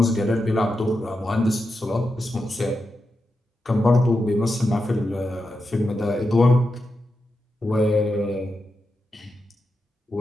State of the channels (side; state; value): both; normal; correlation 0.88